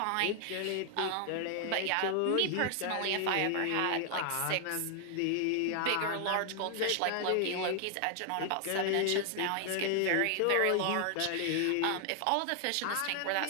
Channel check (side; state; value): both; different; correlation 0.00